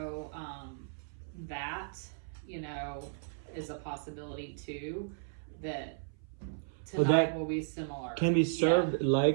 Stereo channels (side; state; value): left; silent; 55 dB below the other